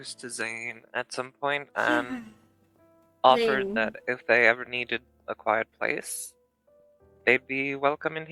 to Zane at some point and offered Zane. that if they ever needed a quiet place, they'd be welcome in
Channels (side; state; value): both; identical; correlation 1.00